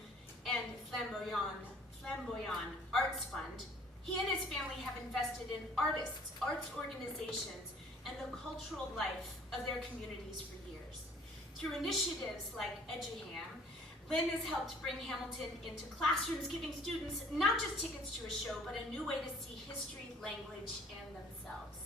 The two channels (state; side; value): normal; both; correlation 0.55